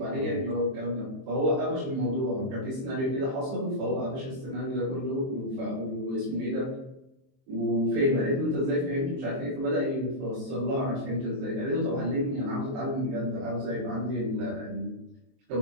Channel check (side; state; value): left; late; 23 ms